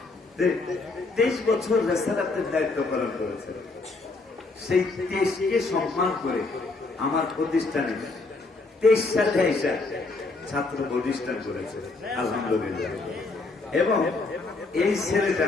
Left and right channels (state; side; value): quieter; right; 3.6 dB